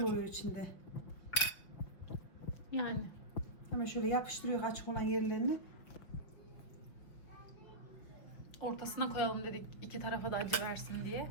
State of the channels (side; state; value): right; late; 5.9 ms